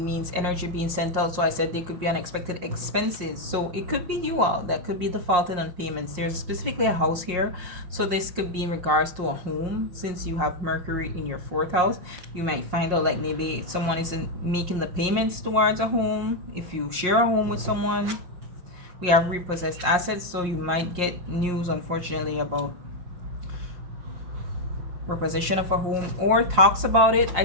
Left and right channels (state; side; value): late; left; 5.6 ms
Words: energy being sent out. So I said they could be unexpected expenses. So it could be you all that could be defaulting on payments. There's specifically a house here. So this could be in regards to a home. Since you have Mercury in your fourth house, you might find out like maybe someone isn't making the payments towards a home. If you share a home with someone, we have repossessed assets. So you might get news, unfortunately, about repossession of a home, or talks about it. I